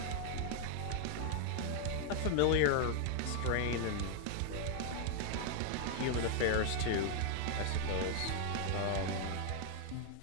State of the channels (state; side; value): different; both; correlation 0.00